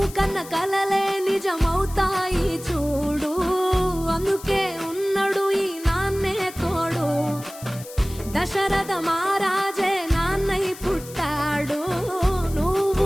కన్న కలలే నిజమవుతాయి చూడు, అందుకే ఉన్నాడు ఈ నాన్నే తోడు. దశరథ మహారాజే నాన్నై పుట్టాడు, నువ్వు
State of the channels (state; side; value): noise; left; hiss, 16 dB below the sound